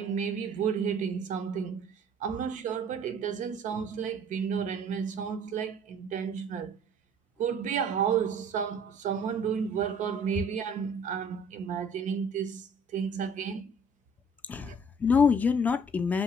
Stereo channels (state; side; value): normal; both; correlation 0.53